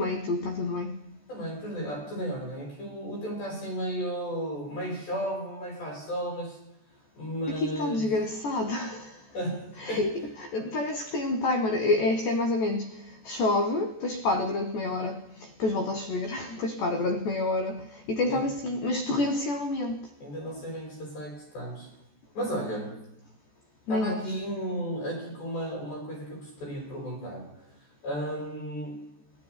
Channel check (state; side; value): late; right; 14 ms